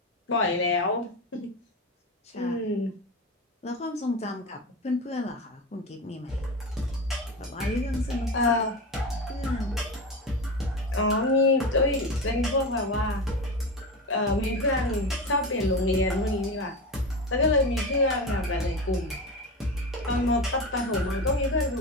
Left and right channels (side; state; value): both; normal; correlation 0.23